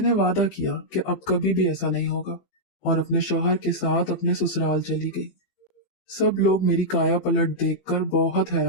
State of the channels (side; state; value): right; late; 15 ms